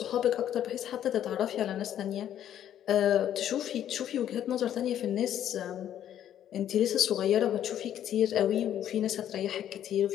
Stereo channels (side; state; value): right; quieter; 10.7 dB